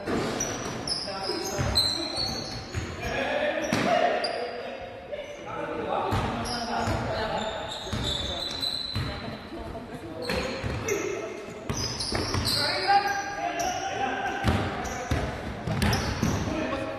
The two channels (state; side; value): identical; both; correlation 1.00